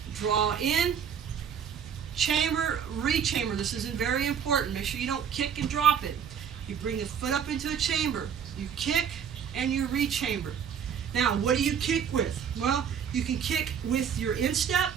draw in, chamber, re-chamber. This is very important. Make sure you don't kick and drop it. You bring the foot up into a chamber, you kick, and you re-chamber. Now, what do you kick with? Well, you can kick with your instep,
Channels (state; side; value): quieter; left; 7.8 dB